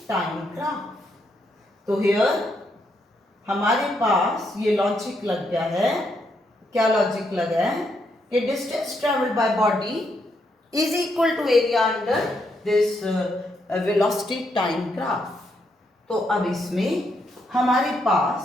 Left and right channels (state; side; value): normal; both; correlation 0.78